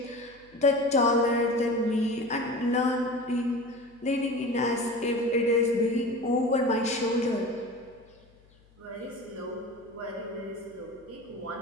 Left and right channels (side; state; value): left; noise; hum, 29 dB below the sound